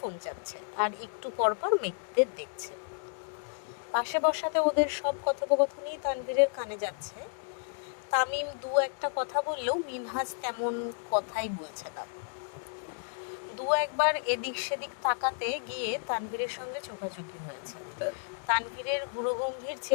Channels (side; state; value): right; silent; digital silence